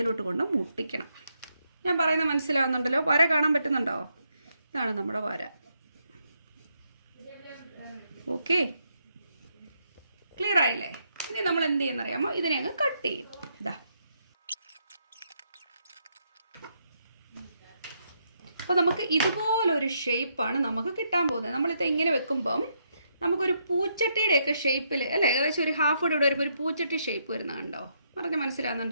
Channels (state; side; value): inverted; both; correlation -0.77